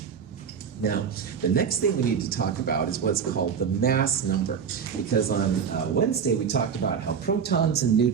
Now, the next thing we need to talk about is what's called the mass number, because on Wednesday we talked about how protons and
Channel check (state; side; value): quieter; left; 6.9 dB